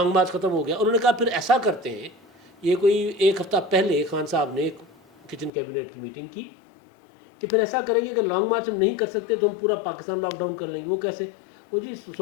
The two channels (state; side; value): drops out; right; at 5.5 s